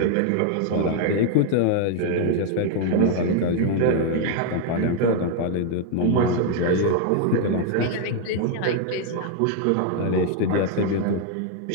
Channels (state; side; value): different; both; correlation 0.00